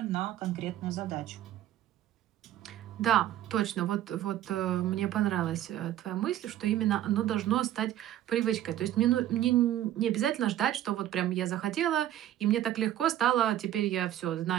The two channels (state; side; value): quieter; left; 12.5 dB